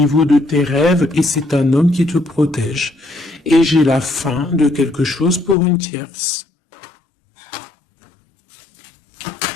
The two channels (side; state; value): right; drops out; at 5.6 s